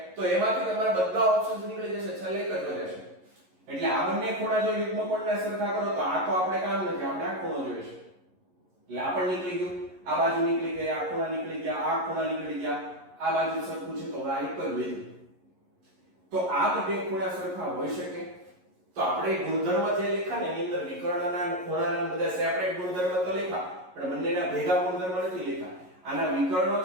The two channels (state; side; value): late; left; 11 ms